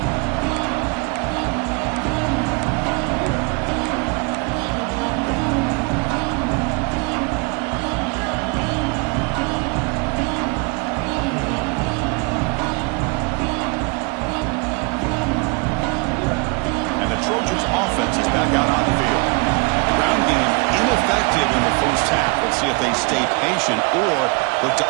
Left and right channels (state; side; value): quieter; left; 30.6 dB